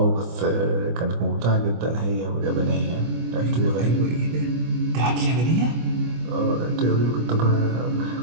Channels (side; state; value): left; late; 25 ms